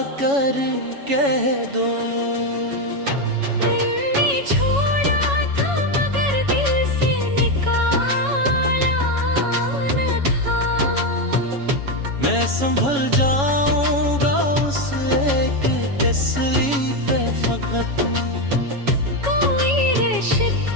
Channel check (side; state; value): left; late; 7.2 ms